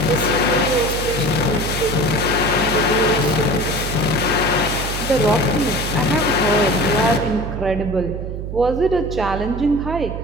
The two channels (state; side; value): noise; right; hum, 6 dB below the sound